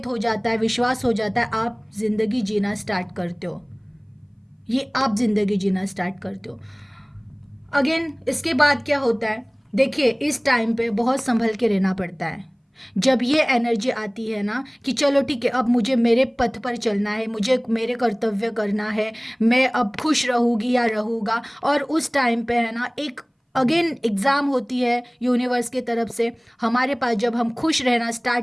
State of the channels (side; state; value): both; identical; correlation 1.00